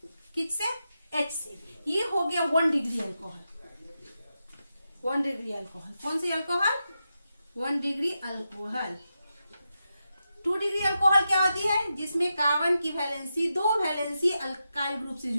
किससे? H से। ये हो गया 1 डिग्री अल्कोहल। 1 डिग्री अल्कोहल कौन सी alcohol? 1 degree alcohol. 2 degree alcohol क्या होती है? जिसमें कार्बन की वैलेंसी 2 वैलेंसी अल्काइल ग्रुप से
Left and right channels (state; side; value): inverted; both; correlation -0.88